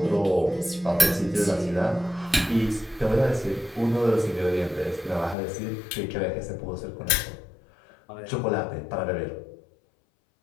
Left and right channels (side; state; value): right; drops out; at 5.4 s